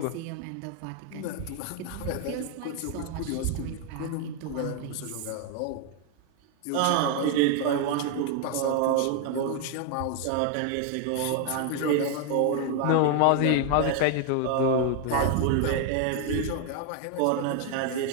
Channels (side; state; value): both; different; correlation 0.00